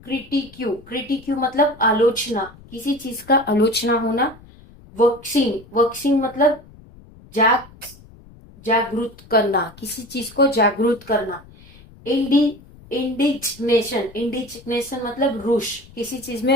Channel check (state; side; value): noise; left; rumble, 22 dB below the sound